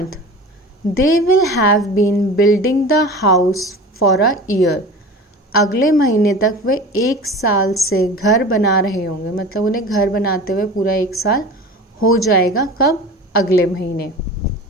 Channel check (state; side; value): normal; both; correlation 0.36